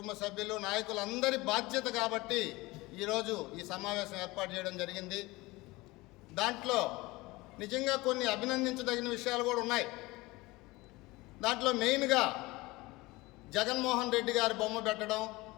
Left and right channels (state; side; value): quieter; right; 21.5 dB